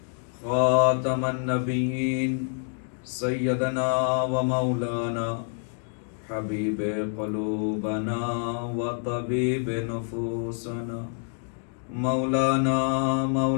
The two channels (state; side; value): silent; right; 60 dB below the other